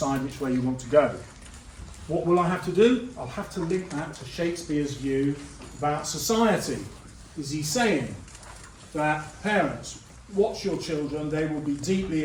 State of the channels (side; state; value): both; identical; correlation 1.00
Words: which way you want to go. What will I have to do? I'll have to link that to Shakespeare's view about society. Is he saying that parents, watch your children, they will be deeply